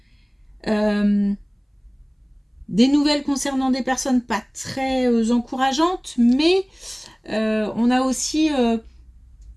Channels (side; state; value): both; identical; correlation 1.00